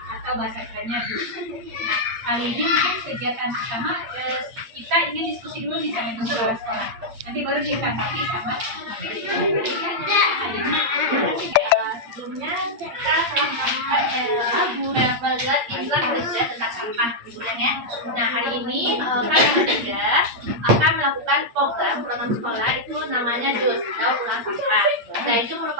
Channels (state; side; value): late; left; 8.6 ms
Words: atau bahasa kerennya dus. Nah, kali ini mungkin kegiatan pertama kita ingin diskusi dulu misalnya untuk orang sekolah. Nanti baru ditanggapi sama sebelumnya kita telah melakukan iklan kerja tentang sampah kemudian ya. Nah hari ini kami bertiga akan melakukan program program sekolah itu namanya DUS atau pulang sampah. Nah itu